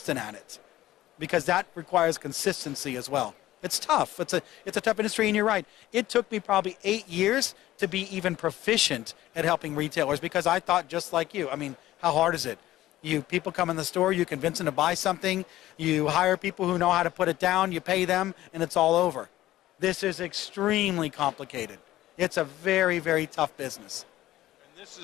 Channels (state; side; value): quieter; right; 15.1 dB